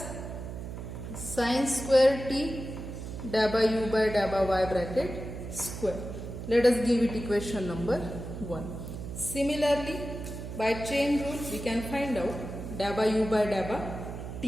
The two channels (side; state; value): right; noise; hum, 8 dB below the sound